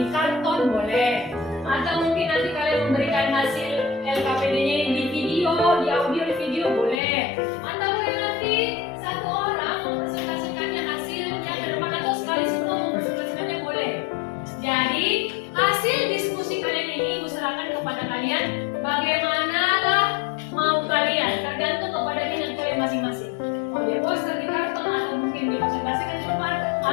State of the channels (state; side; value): drops out; right; at 7.0 s